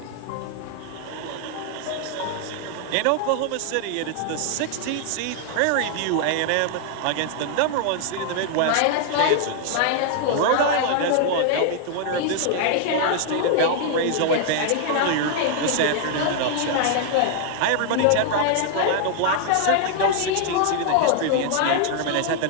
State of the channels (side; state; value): both; different; correlation 0.00